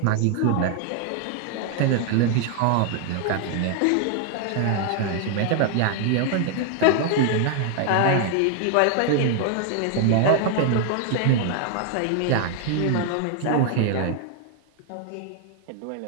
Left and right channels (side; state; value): both; different; correlation 0.00